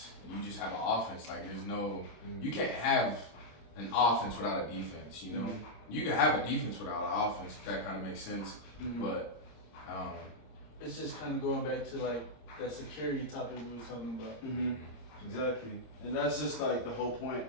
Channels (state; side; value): late; right; 25 ms